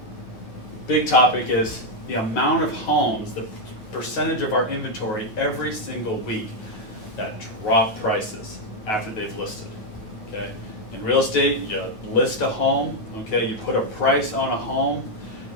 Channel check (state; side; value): late; right; 9.3 ms